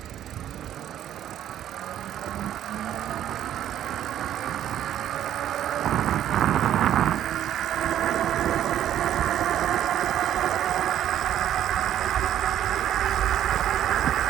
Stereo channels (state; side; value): quieter; left; 11.2 dB